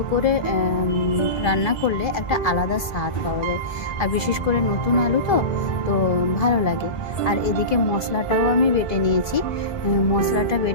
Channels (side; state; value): right; late; 1.6 ms